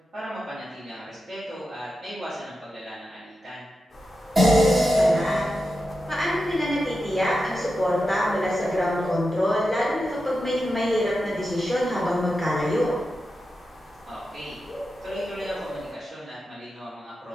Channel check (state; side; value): normal; both; correlation 0.90